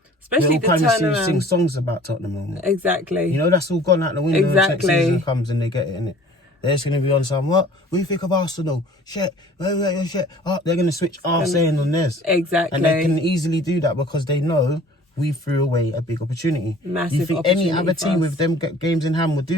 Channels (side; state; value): both; normal; correlation 0.49